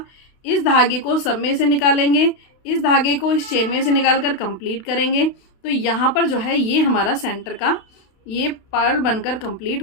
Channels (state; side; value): late; right; 32 ms